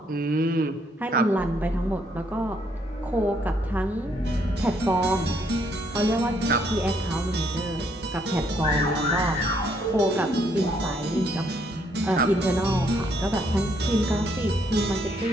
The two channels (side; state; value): both; normal; correlation 0.70